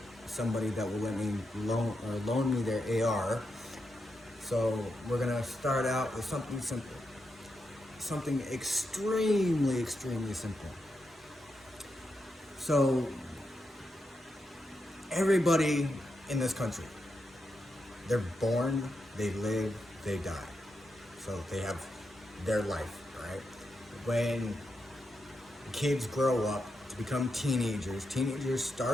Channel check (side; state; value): both; normal; correlation 0.85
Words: somebody that will let me loan me their AR. So we're gonna start out with something simple. Something extremely simple. So everybody in this country, they're born, they live, they die. So they have their life, right? When kids grow up to become teenagers